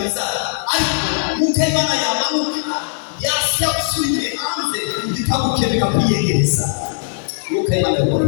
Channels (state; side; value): silent; right; digital silence